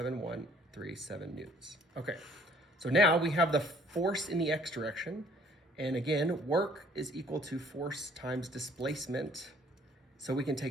newtons. Okay, so now we have the force in the x direction. And again, work is equal to force times displacement. So we can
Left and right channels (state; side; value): normal; both; correlation 0.58